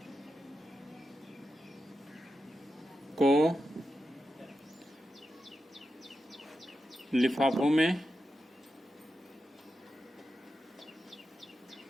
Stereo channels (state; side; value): normal; both; correlation 0.90